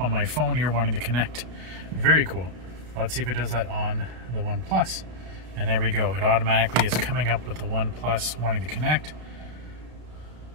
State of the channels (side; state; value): left; late; 33 ms